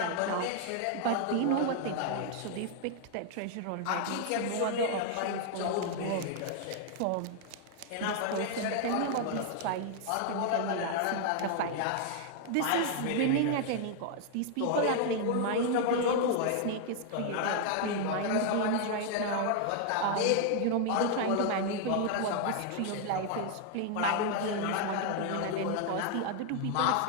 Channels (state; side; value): different; both; correlation 0.00